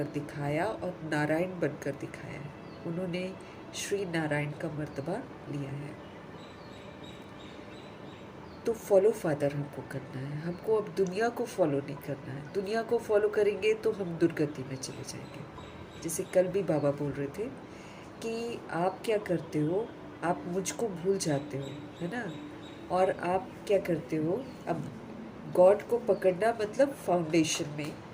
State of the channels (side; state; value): both; identical; correlation 1.00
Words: दिखाया और नारायण बनकर दिखाया है। उन्होंने श्री नारायण का मर्तबा लिया है। तो फॉलो फादर हमको करना है, हमको अब दुनिया को फॉलो नहीं करना है। दुनिया को फॉलो करेंगे तो हम दुर्गति में चले जाएंगे। जैसे कल भी बाबा बोल रहे थे कि आप क्या करते हो, आप मुझको भूल जाते हो, है ना। और आप क्या करते हो, अब गॉड को पकड़ना मतलब फाउंडेशन में